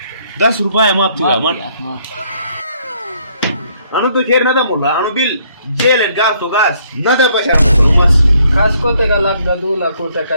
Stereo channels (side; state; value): both; inverted; correlation -0.67